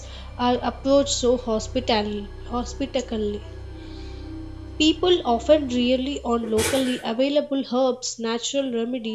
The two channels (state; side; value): identical; both; correlation 1.00